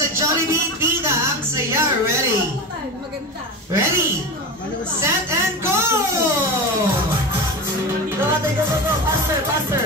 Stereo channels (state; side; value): normal; both; correlation 0.25